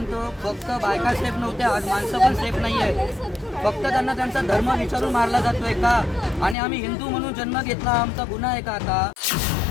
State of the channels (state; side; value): drops out; right; at 6.6 s